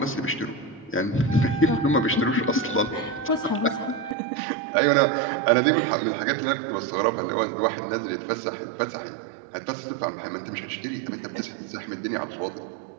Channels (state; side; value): drops out; left; at 4.2 s